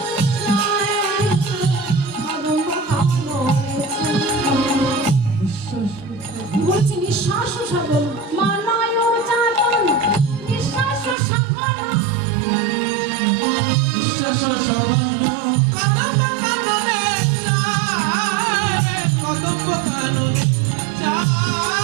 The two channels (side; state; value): left; drops out; at 11.2 s